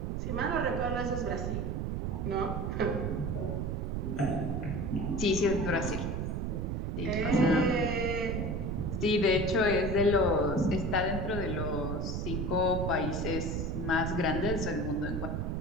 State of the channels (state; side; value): noise; right; rumble, 1 dB below the sound